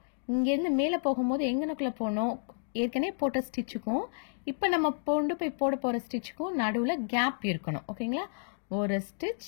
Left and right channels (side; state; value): right; silent; digital silence